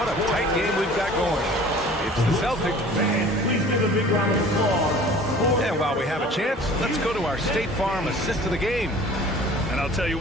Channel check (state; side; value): normal; both; correlation 0.46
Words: a tight game we've got going. It's the Celtics. Please give a big round of applause. And while we have a chance, let's go to our State Farm assist of the game. And I'll tell you